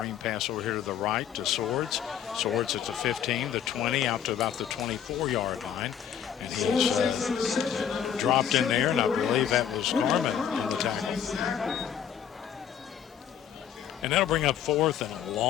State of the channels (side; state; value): right; quieter; 9.0 dB